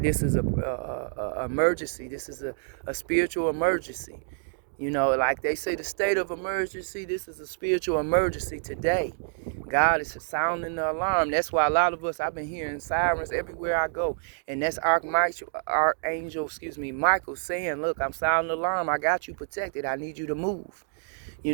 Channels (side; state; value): left; silent; digital silence